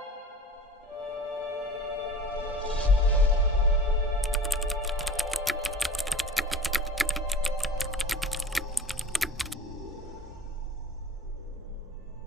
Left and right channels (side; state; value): both; normal; correlation 0.40